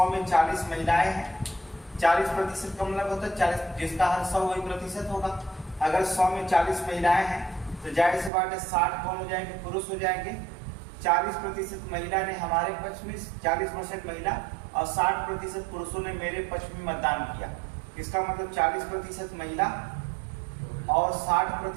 में 40 महिलाएं हैं। 40% का मतलब होता है 40, जिसका हर 100 वही प्रतिशत होगा। अगर 100 में 40 महिलाएं हैं तो जाहिर सी बात है 60 कौन हो जाएंगे, पुरुष हो जाएंगे। 40% महिला ने हमारे पक्ष में, 40% महिला और 60% पुरुषों ने मेरे पक्ष में मतदान किया। इसका मतलब 40% महिला और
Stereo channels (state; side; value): drops out; left; at 8.3 s